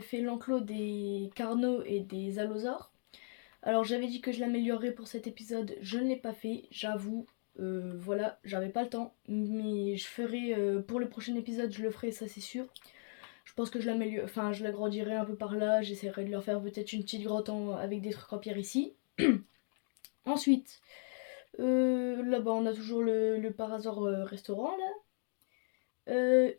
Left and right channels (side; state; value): right; silent; digital silence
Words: fait l'enclos des carnaux et des allosaures. Alors j'avais dit que je l'améliorerais pour cet épisode, je ne l'ai pas fait, j'avoue. Voilà, j'avais pas le temps, mais je ferai pour le prochain épisode, je le ferai, ça c'est sûr. Je pense que je l'améliore, enfin je l'agrandirai un peu par là, j'essaierai de leur faire peut-être une petite grotte avec des trucs en pierre ici. Ensuite, là-bas on a toujours le par hasard restaurant là.